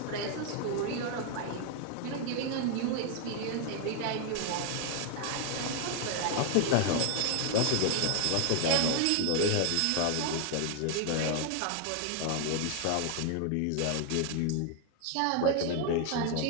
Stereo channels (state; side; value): different; both; correlation 0.00